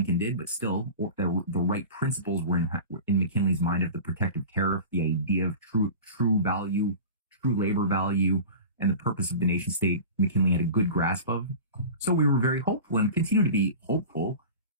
did, but still the right principles were in McKinley's mind of the protective tariff, the idea of true value, true labor value, and the purpose of the nation state. McKinley had a good grasp of. So we were very hopeful and continue to be hopeful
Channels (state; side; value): inverted; both; correlation -0.35